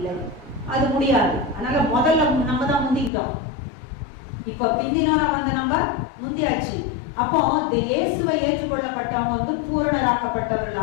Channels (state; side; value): drops out; right; at 3.1 s